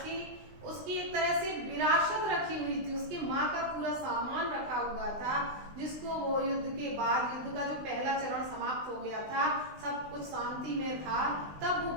उसकी एक तरह से विरासत रखी हुई थी, उसकी माँ का पूरा सामान रखा हुआ था, जिसको वो युद्ध के बाद, युद्ध का जो पहला चरण समाप्त हो गया था, सब कुछ शांति में था, तब वो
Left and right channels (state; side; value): late; left; 20 ms